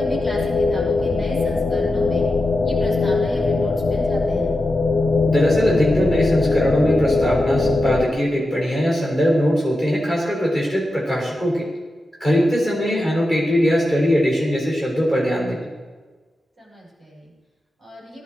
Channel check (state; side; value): normal; both; correlation 0.90